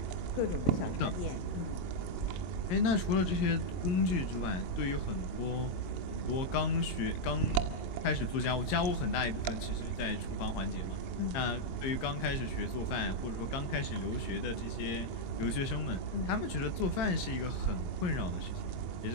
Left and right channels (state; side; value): late; right; 22 ms